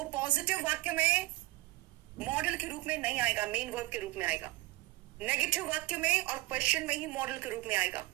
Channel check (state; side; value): quieter; left; 19.4 dB